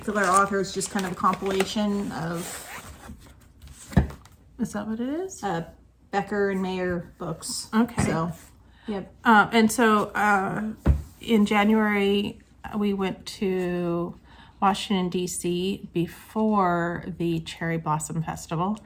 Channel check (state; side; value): identical; both; correlation 1.00